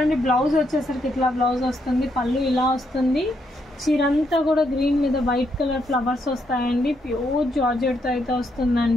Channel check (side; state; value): both; normal; correlation 0.77